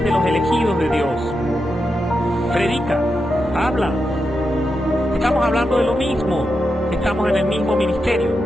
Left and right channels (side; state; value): both; normal; correlation 0.87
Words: de los elegidos de Dios. Predica, habla. Estamos hablando de lo mismo, estamos en el mismo ministerio.